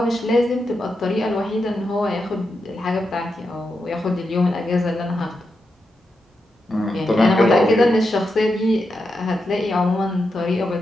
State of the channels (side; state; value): both; normal; correlation 0.86